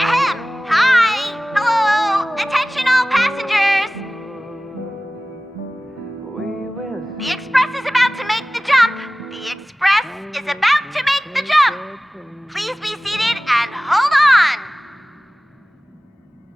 Hi! Hello! Attention all passengers! The express is about to make the jump! The express is about to make the jump! Please be seated and hold on!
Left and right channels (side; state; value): both; normal; correlation 0.97